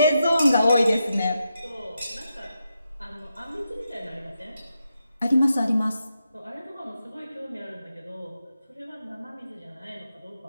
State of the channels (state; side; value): inverted; both; correlation -0.86